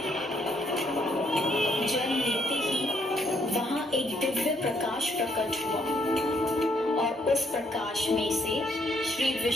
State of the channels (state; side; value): normal; both; correlation 0.70